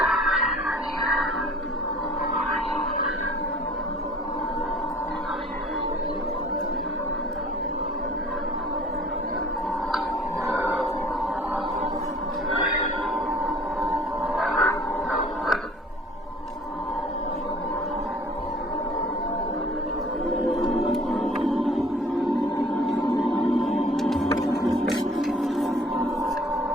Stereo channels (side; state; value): both; normal; correlation 0.50